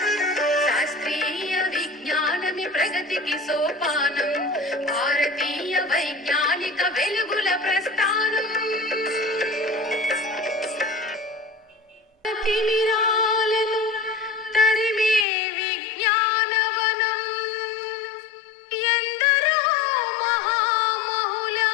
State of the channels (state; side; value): drops out; right; at 15.2 s